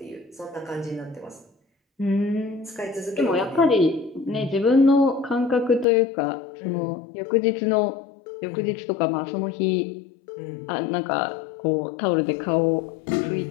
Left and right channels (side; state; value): right; drops out; at 5.9 s